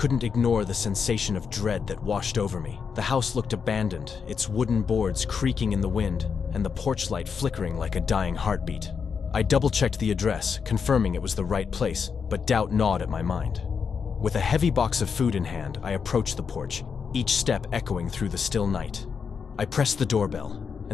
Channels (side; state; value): right; quieter; 6.1 dB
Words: ignore the sensation of dread that washed over me. The house looked abandoned, its wooden boards creaking in the wind, and the porch light flickering like a dying heartbeat. I double-checked the address, confirming it was the right place, but doubt gnawed at my mind. With a heavy box of food in hand, I approached the porch, each step echoing through the still night. I pressed the doorbell,